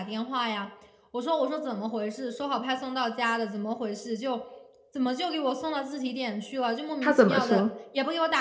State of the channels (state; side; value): identical; both; correlation 1.00